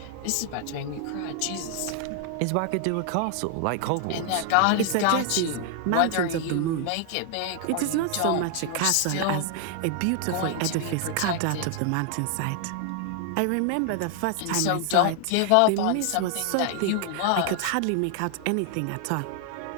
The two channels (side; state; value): both; different; correlation 0.00